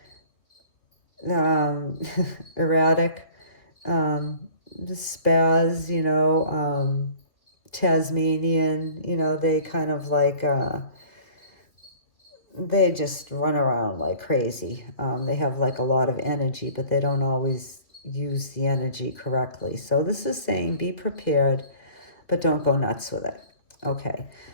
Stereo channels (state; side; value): late; right; 2.7 ms